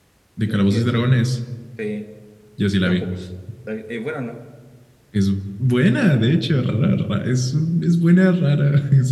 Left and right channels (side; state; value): both; identical; correlation 1.00